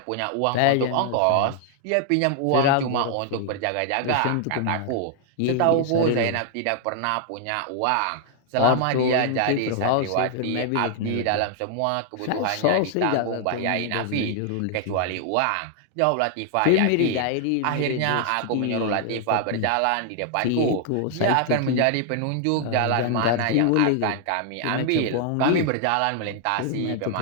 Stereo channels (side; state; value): both; different; correlation 0.00